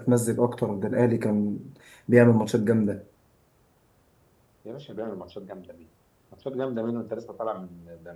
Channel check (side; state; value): both; identical; correlation 1.00